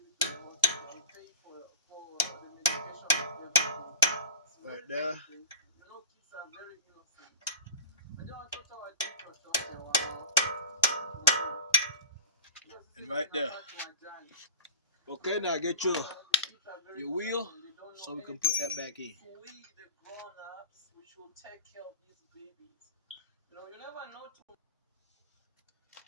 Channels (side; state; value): both; inverted; correlation -0.32